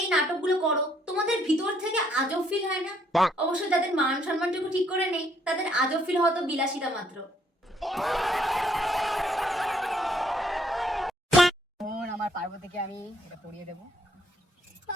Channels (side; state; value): both; normal; correlation 0.68